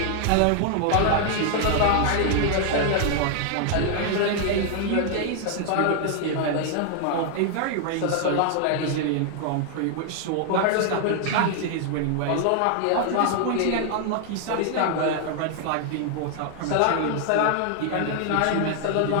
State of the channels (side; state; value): both; different; correlation 0.00